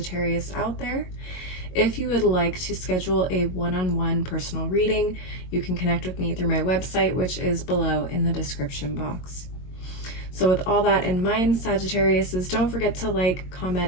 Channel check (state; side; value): late; right; 22 ms